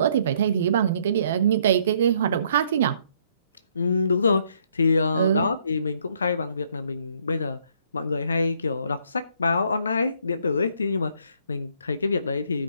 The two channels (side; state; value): both; inverted; correlation -0.66